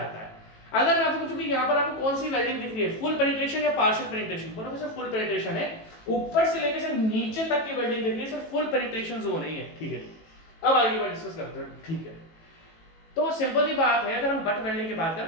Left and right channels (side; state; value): right; late; 18 ms